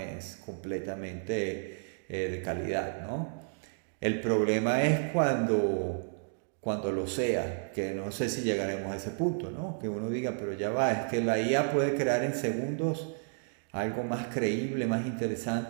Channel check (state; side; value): silent; left; digital silence